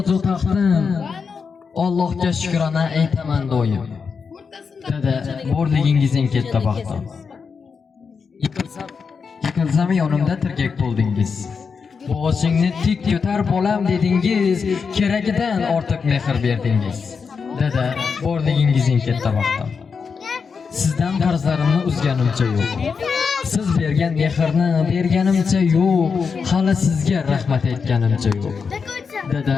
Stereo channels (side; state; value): right; quieter; 5.6 dB